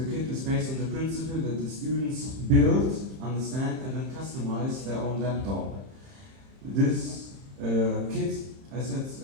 kit is based on the principle that the students build, understand, and then customize their own laptop. This kit, as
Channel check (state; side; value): late; left; 31 ms